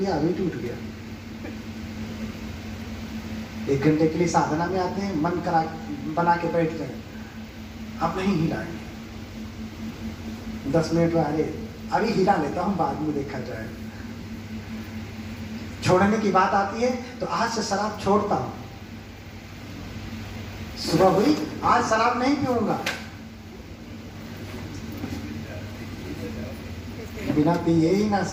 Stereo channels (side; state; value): both; identical; correlation 1.00